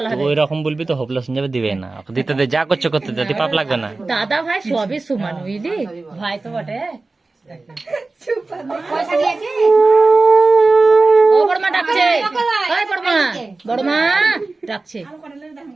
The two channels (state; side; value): quieter; left; 3.4 dB